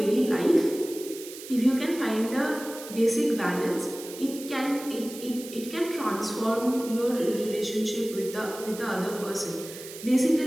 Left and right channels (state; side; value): noise; right; hiss, 14 dB below the sound